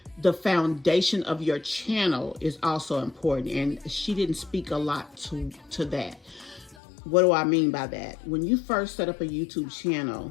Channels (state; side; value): drops out; right; at 6.8 s